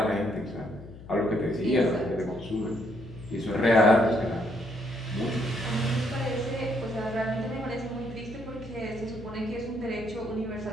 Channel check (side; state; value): left; noise; hum, 16 dB below the sound